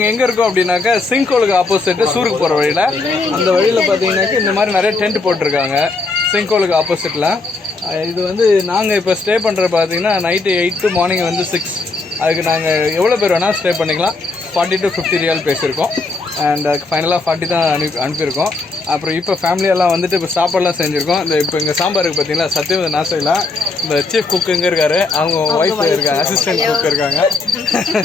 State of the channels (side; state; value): right; quieter; 3.7 dB